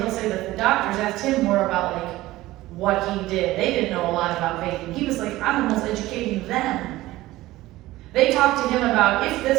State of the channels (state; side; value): quieter; left; 17.2 dB